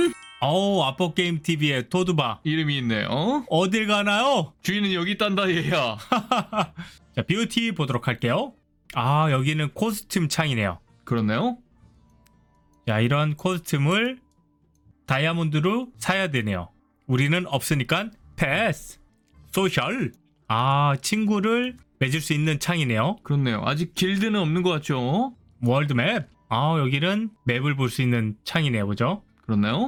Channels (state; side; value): identical; both; correlation 1.00